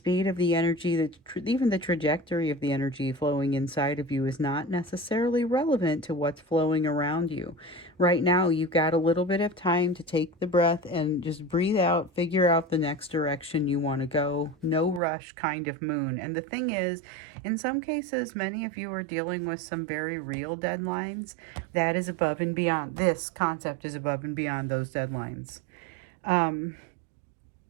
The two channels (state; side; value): drops out; left; at 15.0 s